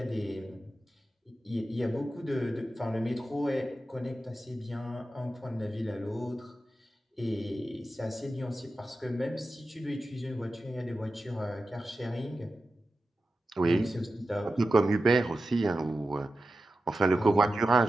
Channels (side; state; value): both; normal; correlation 0.93